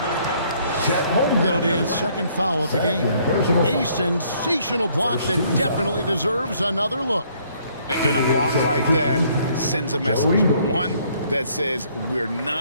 That'll be his 2nd foul of the game. A sensational block that definitely deserves another look. And a block like that sends a message. One that says we're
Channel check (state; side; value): inverted; both; correlation -0.64